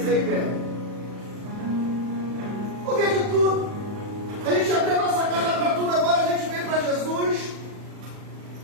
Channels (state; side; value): late; left; 39 ms